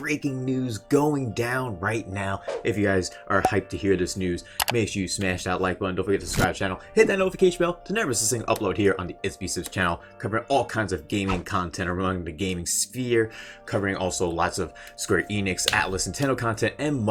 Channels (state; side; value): identical; both; correlation 1.00